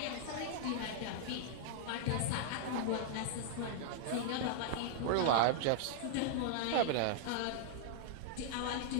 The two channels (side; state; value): both; different; correlation -0.01